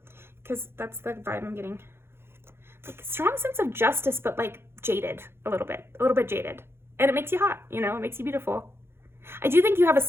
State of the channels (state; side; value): late; left; 0.11 ms